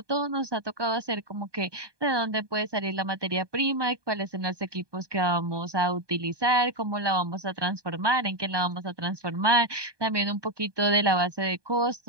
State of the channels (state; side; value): late; left; 1.2 ms